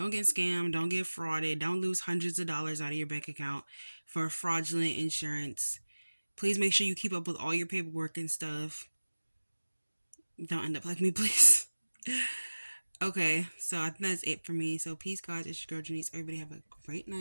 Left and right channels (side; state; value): both; inverted; correlation -1.00